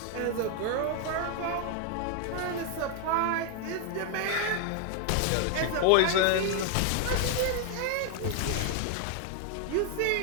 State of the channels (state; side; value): different; both; correlation 0.00